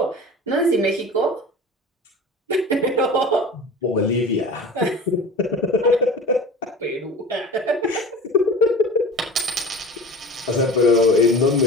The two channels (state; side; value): normal; both; correlation 0.37